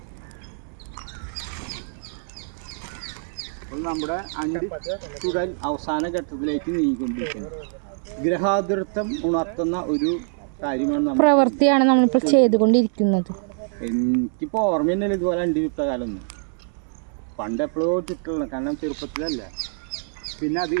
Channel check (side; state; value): left; silent; 60 dB below the other